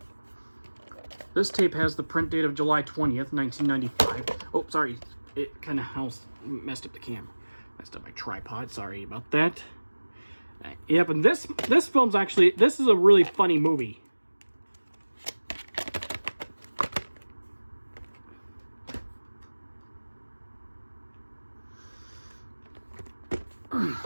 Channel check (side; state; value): both; inverted; correlation -1.00